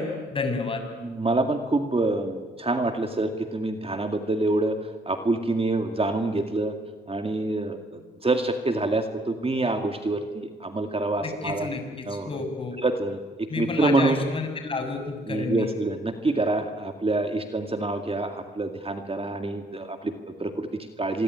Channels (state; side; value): normal; both; correlation 0.65